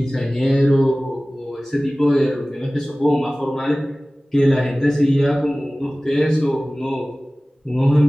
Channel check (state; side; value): normal; both; correlation 0.98